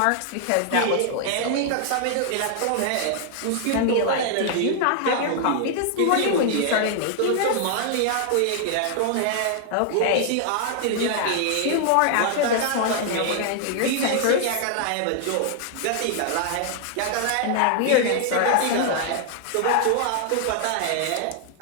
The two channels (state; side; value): different; both; correlation 0.00